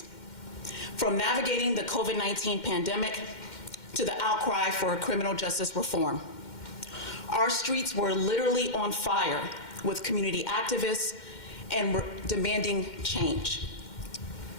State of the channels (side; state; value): right; late; 2.1 ms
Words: From navigating the COVID-19 pandemic to the outcry for criminal justice reform. Our streets were literally on fire with community activists and were demanding change.